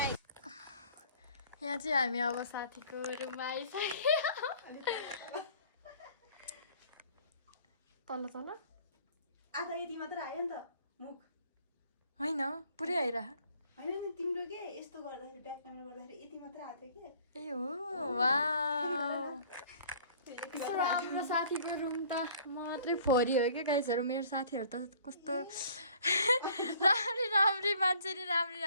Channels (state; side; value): inverted; both; correlation -0.54